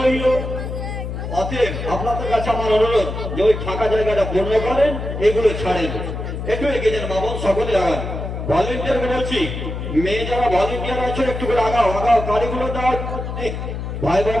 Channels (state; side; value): noise; left; hum, 6 dB below the sound